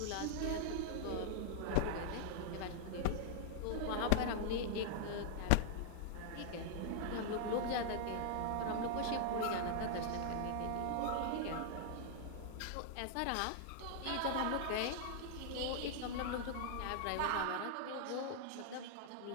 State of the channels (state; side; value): different; both; correlation 0.00